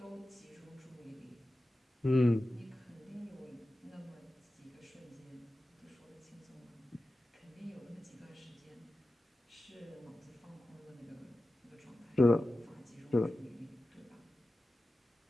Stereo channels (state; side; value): normal; both; correlation 0.94